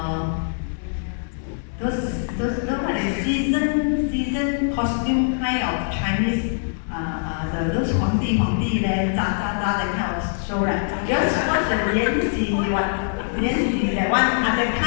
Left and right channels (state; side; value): silent; right; digital silence